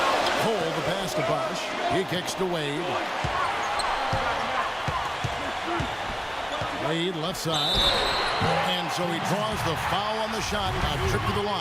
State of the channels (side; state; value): both; identical; correlation 1.00